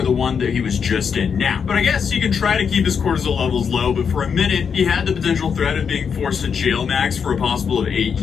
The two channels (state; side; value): quieter; right; 6.6 dB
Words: the one that he was just in now. But I guess he can try to keep his cortisol levels low, but for a minute, he had the potential threat of being forced to jail max for a possible of 8